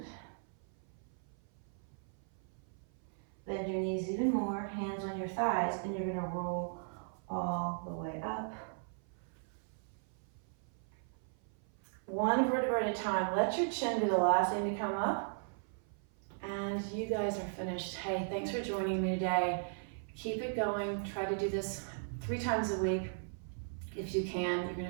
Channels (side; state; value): left; silent; 53 dB below the other